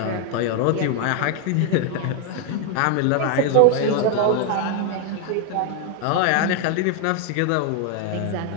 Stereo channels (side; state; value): both; different; correlation 0.01